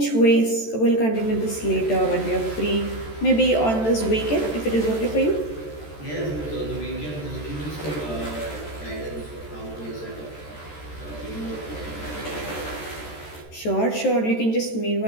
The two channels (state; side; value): late; right; 13 ms